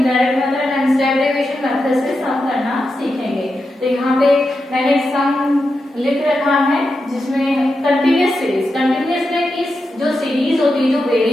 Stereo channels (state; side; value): normal; both; correlation 0.88